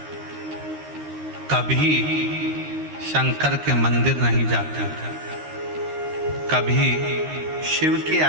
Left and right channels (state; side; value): late; left; 13 ms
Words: कभी शंकर के मंदिर नहीं जाते थे, कभी शिव की